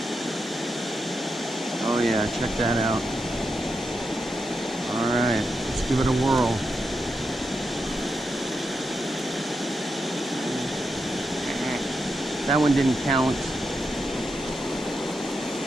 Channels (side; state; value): both; normal; correlation 0.86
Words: Oh yeah, check that out. All right, let's give it a whirl. That one didn't count.